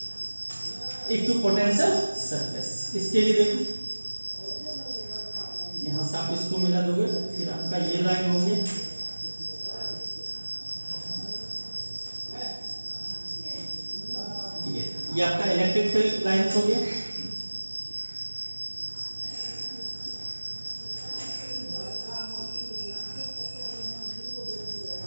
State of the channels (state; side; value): inverted; both; correlation -1.00